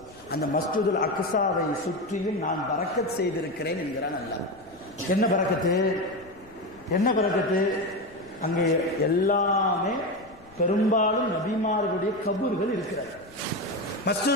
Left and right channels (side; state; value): left; noise; rumble, 25 dB below the sound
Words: அந்த மஸ்ஜிதுல் அக்ஸாவை சுற்றியும் நான் பரக்கத் செய்திருக்கிறேன் என்கிறான் அல்லாஹ். என்ன பரக்கத்து? அங்கே எல்லாமே பெரும்பாலும் நபிமார்களுடைய கபூர்கள் இருக்கிறது.